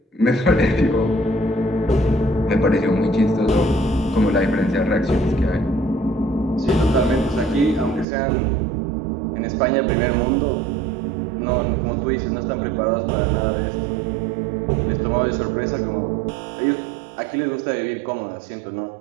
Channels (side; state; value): left; drops out; at 8.1 s